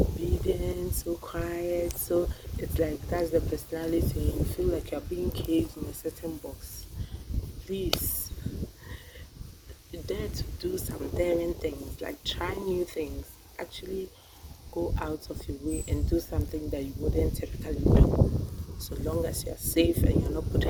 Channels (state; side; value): identical; both; correlation 1.00